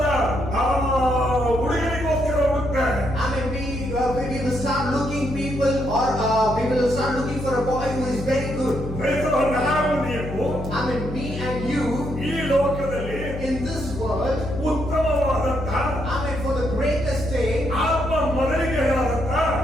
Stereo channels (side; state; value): left; noise; hum, 8 dB below the sound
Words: ಹುಡುಗಿಗೋಸ್ಕರ ಹುಡುಕ್ತಾರೆ. Amen. We will start looking people, or we will start looking for a boy who is very good. ನಾವು ನೀವು Amen. Me and you ಈ ಲೋಕದಲ್ಲಿ in this world. ಉತ್ತಮವಾದಂತ Amen. For the greatest day. ಆತ್ಮ ಮೊದಲಿಗೆಯಾದಂತ